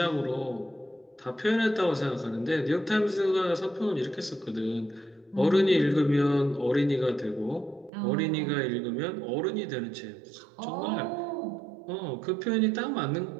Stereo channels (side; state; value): left; drops out; at 7.9 s